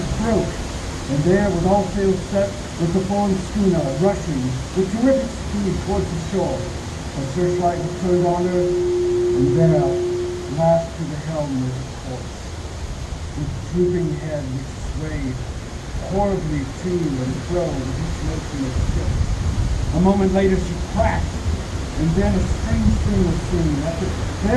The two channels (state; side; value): identical; both; correlation 1.00